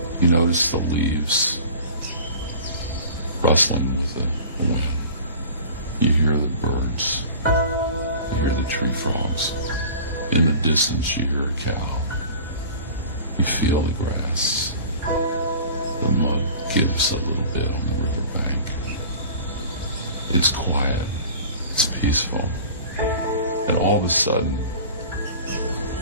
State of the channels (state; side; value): inverted; both; correlation -0.40